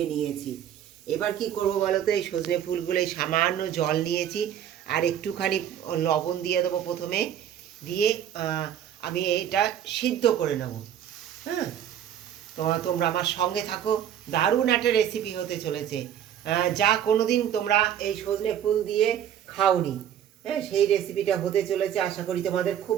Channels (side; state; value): left; quieter; 10.0 dB